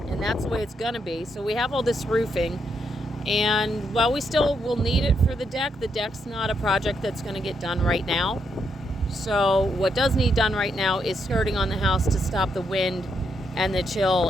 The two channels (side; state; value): both; normal; correlation 0.79